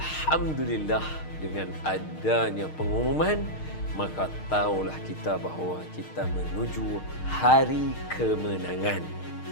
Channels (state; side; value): late; right; 6.5 ms